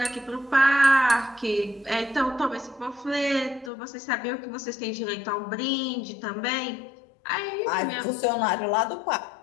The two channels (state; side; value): drops out; right; at 3.7 s